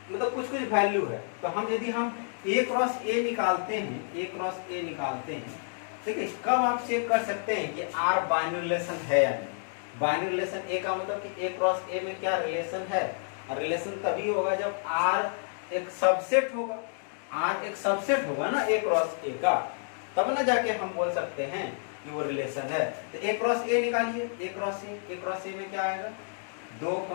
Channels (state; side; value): silent; right; digital silence